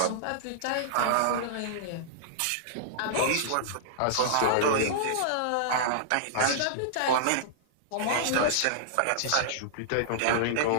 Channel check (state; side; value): different; both; correlation -0.02